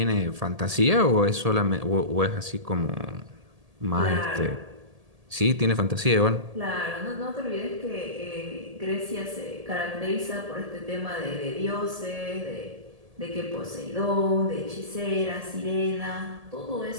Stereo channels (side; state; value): left; late; 1.7 ms